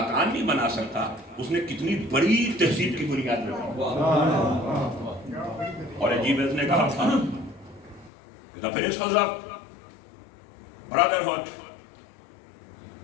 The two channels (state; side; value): drops out; right; at 8.1 s